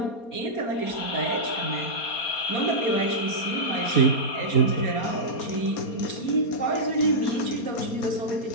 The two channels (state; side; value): late; right; 4.3 ms